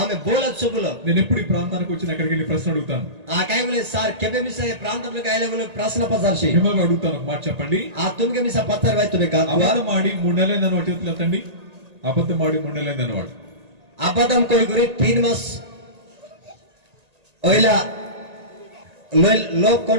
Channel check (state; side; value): late; left; 1.8 ms